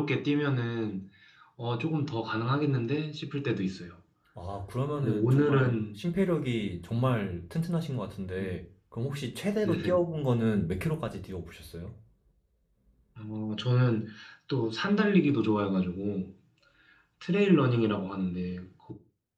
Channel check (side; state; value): both; identical; correlation 1.00